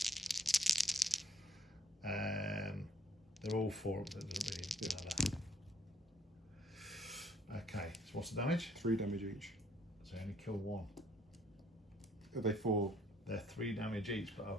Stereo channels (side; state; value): both; normal; correlation 0.61